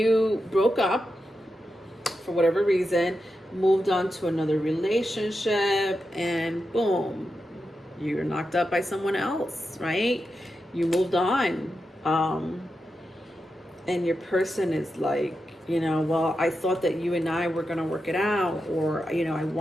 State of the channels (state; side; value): normal; both; correlation 0.88